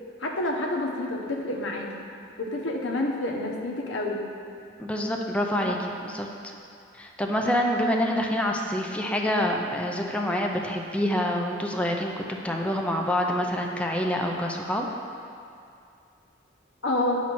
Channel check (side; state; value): both; normal; correlation 0.51